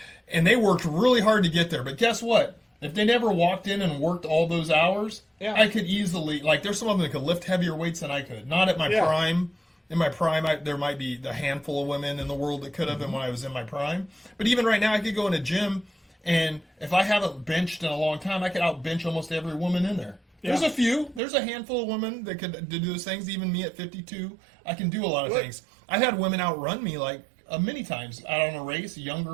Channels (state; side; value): drops out; left; at 21.2 s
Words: and they worked really hard to get there. But guess what? If they never walked in and worked all those hours, I could easily, like, there's some of them that could lift heavier weights than I could. Not at my prime. In my prime, there might be a handful of women in the world that could have been when I was in my prime. But even right now, I could go in a gym, and if I haven't benched in a long time, I could out-bench almost every woman in there. There's a few. There's a handful of women that could do those things. Even me at 52, I can do a lot of things. I've had women outrun me, like, many times out on a race,